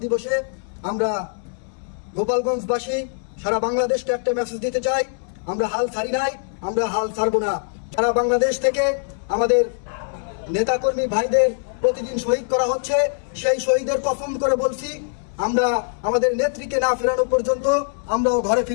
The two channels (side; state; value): right; silent; digital silence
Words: দিবসে আমরা গোপালগঞ্জবাসী সারা বাংলাদেশকে একটা মেসেজ দিতে চাই, আমরা হাল ছাড়ি নাই, আমরা হাল ছাড়বো না। সারা বাংলাদেশ থেকে আমাদের নেতাকর্মী ভাইদের প্রতিদিন শহীদ করা হচ্ছে, সেই শহীদের কসম করে বলছি আমরা আমাদের নেত্রীকে না ফেরানো পর্যন্ত আমরাও ঘরে